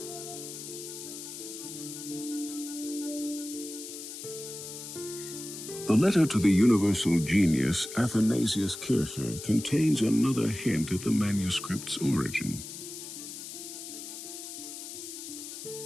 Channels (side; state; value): left; noise; hiss, 10 dB below the sound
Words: The letter to the universal genius Athanasius Kircher contains another hint at the manuscript's origin.